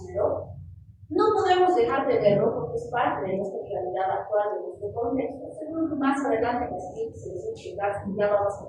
pero no podemos dejar de verlo porque es parte de nuestra realidad actual, de nuestro contexto. Seguro más adelante en las siguientes sesiones ya vamos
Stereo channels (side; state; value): both; identical; correlation 1.00